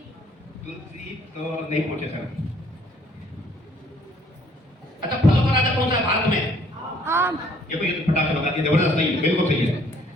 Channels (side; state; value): both; normal; correlation 0.61